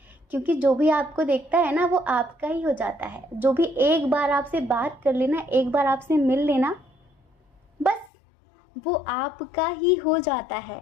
क्योंकि जो भी आपको देखता है ना वो आपका ही हो जाता है। जो भी एक बार आपसे बात कर लेना, एक बार आपसे मिल लेना, बस वो आपका ही हो जाता है।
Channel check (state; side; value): drops out; right; at 8.1 s